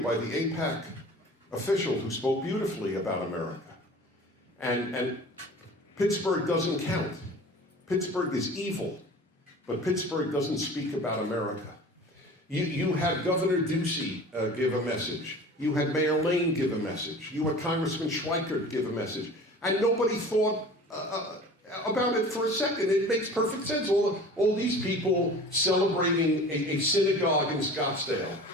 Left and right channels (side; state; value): both; normal; correlation 0.41